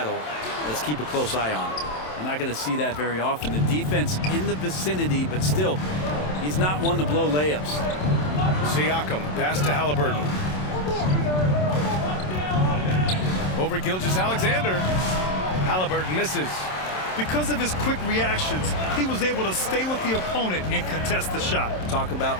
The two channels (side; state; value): right; late; 27 ms